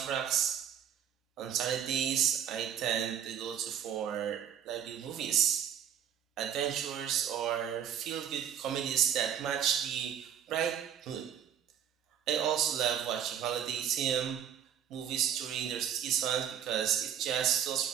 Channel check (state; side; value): quieter; left; 9.1 dB